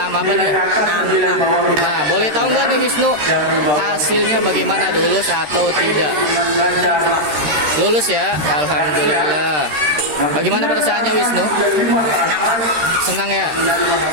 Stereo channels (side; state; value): left; late; 13 ms